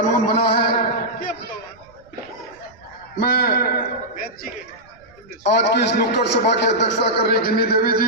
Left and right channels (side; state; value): right; noise; rumble, 29 dB below the sound